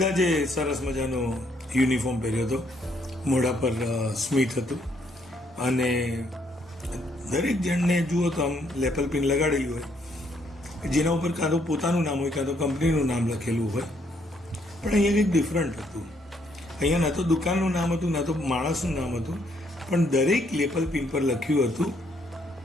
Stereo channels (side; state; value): both; normal; correlation 0.70